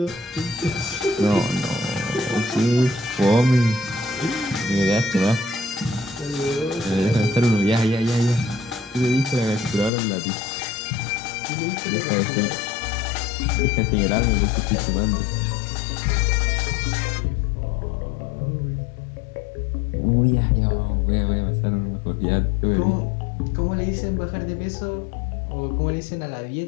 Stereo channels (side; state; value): right; drops out; at 9.9 s